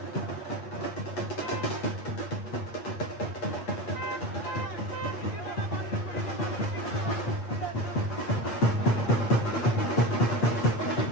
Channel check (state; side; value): late; right; 8.8 ms